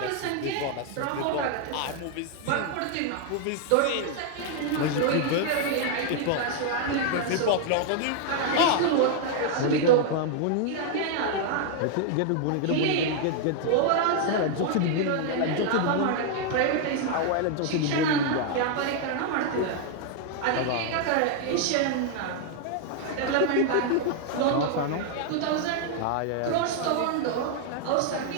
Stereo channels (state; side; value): different; both; correlation 0.00